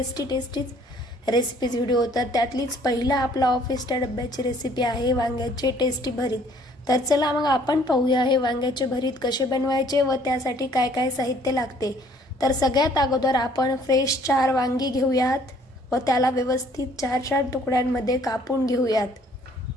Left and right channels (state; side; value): normal; both; correlation 0.59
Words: रेसिपीज व्हिडिओ. तर त्यातलीच पहिला आपला ऑफिसच्या डब्याची रेसिपी आहे वांग्याचे टेस्टी भरीत. तर चला मग आपण पाहूया हे वांग्याचे भरीत कसे बनवायचे व त्यासाठी काय काय साहित्य लागते. तर सगळ्यात अगोदर आपण फ्रेश 4 वांगी घेऊयात व त्याला व्यवस्थित 4 तुकड्यांमध्ये कापून घेऊयात.